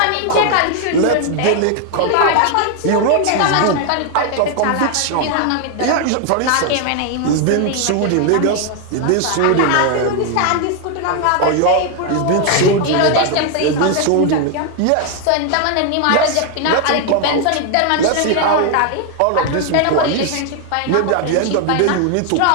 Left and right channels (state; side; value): different; both; correlation 0.00